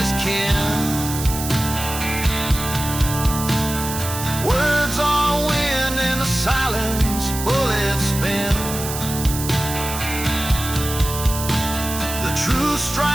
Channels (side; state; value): right; noise; hiss, 7 dB below the sound